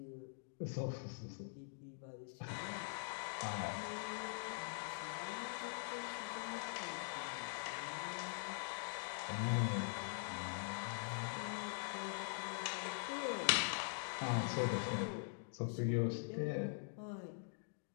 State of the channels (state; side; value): silent; right; digital silence